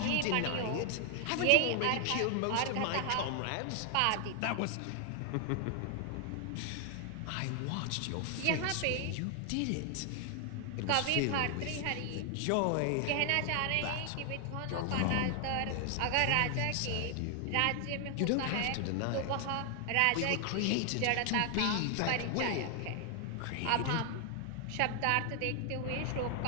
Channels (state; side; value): different; both; correlation 0.00